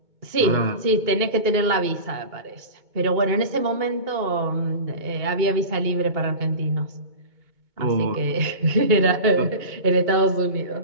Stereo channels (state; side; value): late; left; 2.2 ms